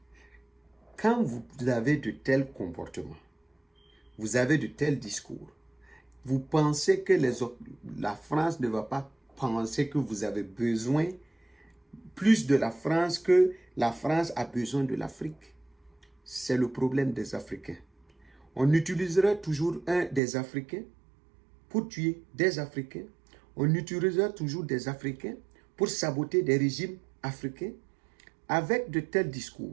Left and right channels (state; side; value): drops out; left; at 20.2 s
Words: quand vous avez de tels comportements, vous avez de tels discours, vous pensez que la France ne va pas penser que vous avez besoin plus de la France que la France a besoin de l'Afrique. C'est le problème des Africains. On utilisera toujours des Africains pour tuer des Africains. On utilisera toujours des Africains pour saboter des régimes africains avec de tels